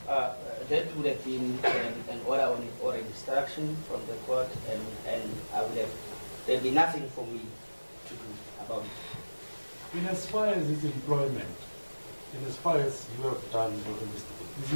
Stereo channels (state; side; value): inverted; both; correlation -1.00